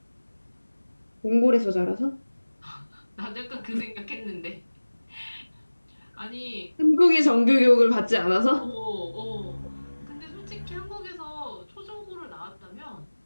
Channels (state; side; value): inverted; both; correlation -1.00